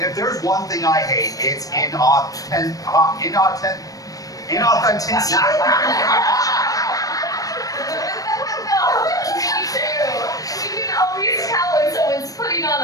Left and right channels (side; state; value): right; late; 0.17 ms